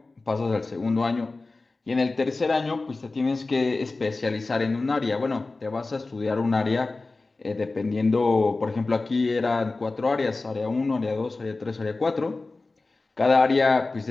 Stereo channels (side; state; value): right; quieter; 3.4 dB